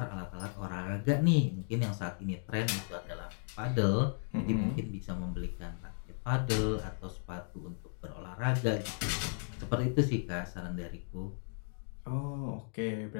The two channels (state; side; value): silent; right; digital silence